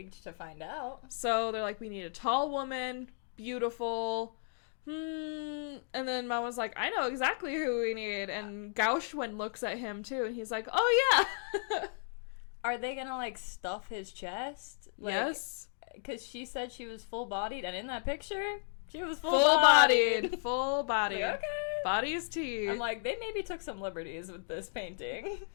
to find out. So they're like, we need a tall woman, beautiful. And then Mama's like, I know exactly who we need. And Gauchwen looks at him too, and he's like, oh yeah. Are they gonna like stuff his chest? Like, yes. Because she said she was full bodied, and in that picture, she was full bodied. Full bodied. Like, okay. Body is tea. I'm like, they maybe took some liberties with this painting.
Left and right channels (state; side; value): silent; right; digital silence